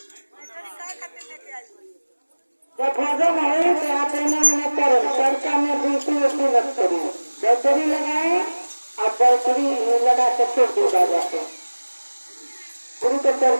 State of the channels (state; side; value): inverted; both; correlation -1.00